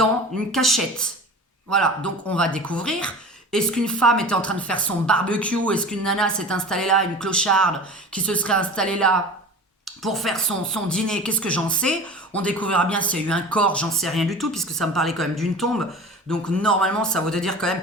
une cachette. Voilà, donc on va découvrir. Est-ce qu'une femme était en train de faire son barbecue? Est-ce qu'une nana s'est installée là, une clocharde qui se serait installée là pour faire son dîner? Qu'est-ce que j'en sais? On découvrira bien s'il y a eu un corps, j'en sais rien du tout, puisque ça me parlait quand même d'une tombe. Donc normalement, ça voudrait dire quand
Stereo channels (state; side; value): normal; both; correlation 0.37